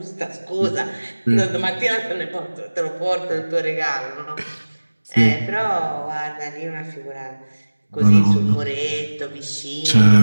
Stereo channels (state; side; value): inverted; both; correlation -1.00